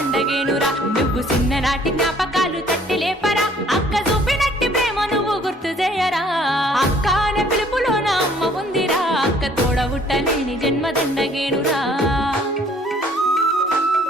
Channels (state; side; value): normal; both; correlation 0.59